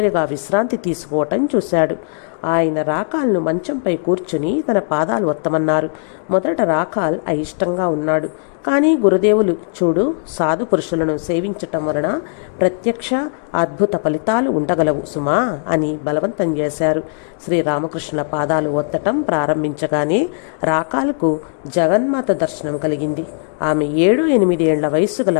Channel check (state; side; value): silent; right; digital silence